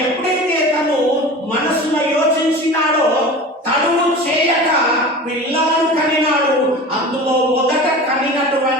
ఎప్పుడైతే తను మనసులో యోచించినాడో, తను చేయక పిల్లలను కనినాడు. అందులో మొదట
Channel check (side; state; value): both; normal; correlation 0.35